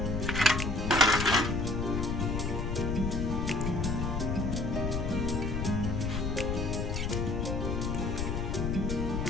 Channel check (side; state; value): left; noise; rumble, 1 dB below the sound